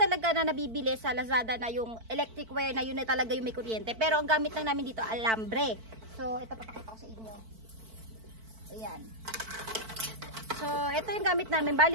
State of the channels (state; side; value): late; left; 4.5 ms